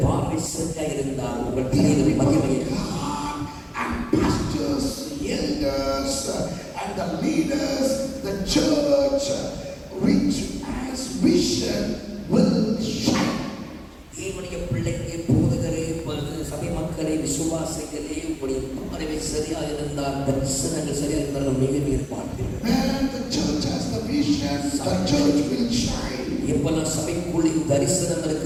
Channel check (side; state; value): both; identical; correlation 1.00